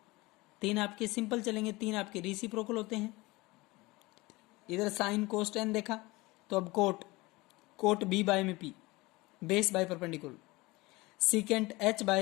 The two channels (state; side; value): quieter; right; 21.9 dB